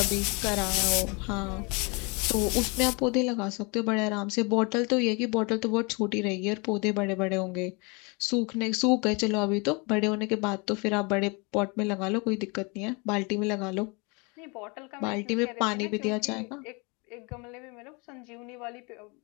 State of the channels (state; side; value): quieter; right; 30.1 dB